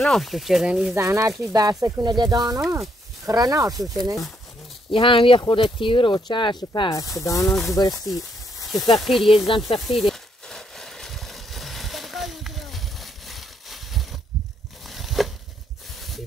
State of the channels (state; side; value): normal; both; correlation 0.74